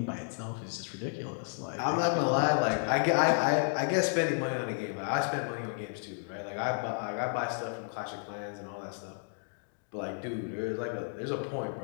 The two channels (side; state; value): right; silent; 56 dB below the other